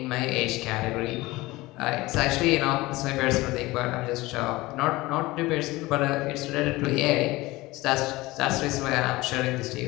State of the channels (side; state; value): right; quieter; 20.1 dB